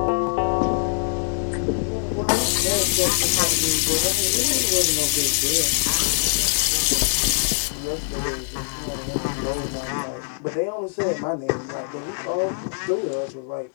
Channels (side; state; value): right; silent; digital silence